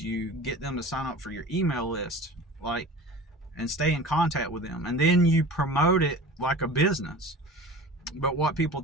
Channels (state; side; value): normal; both; correlation 0.38